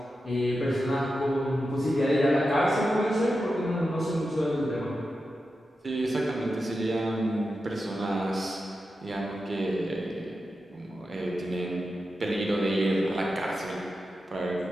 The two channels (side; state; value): both; normal; correlation 0.90